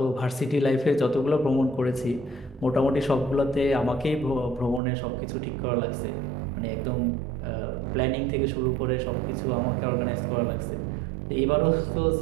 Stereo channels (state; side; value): drops out; left; at 4.8 s